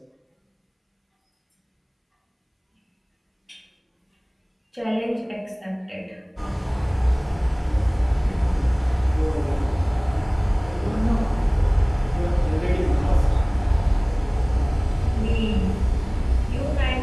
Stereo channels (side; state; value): both; identical; correlation 1.00